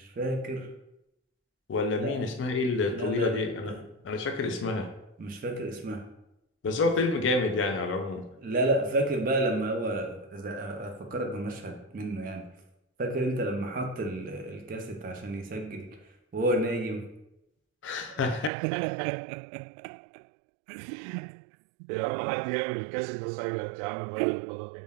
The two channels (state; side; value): drops out; left; at 18.5 s